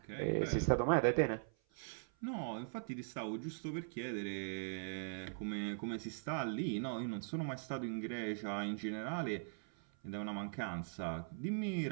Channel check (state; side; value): silent; left; 50 dB below the other